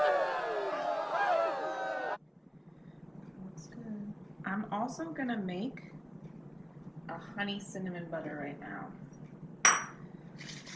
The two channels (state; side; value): identical; both; correlation 1.00